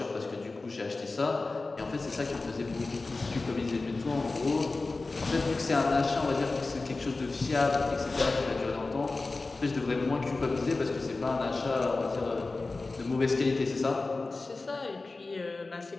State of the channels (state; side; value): quieter; right; 3.5 dB